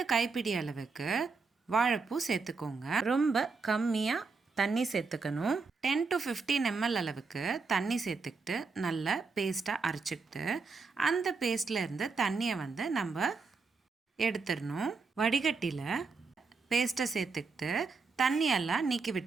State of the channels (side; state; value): left; quieter; 4.5 dB